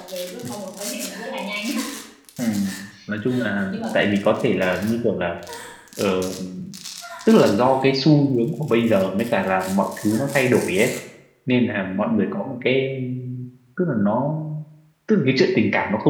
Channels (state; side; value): identical; both; correlation 1.00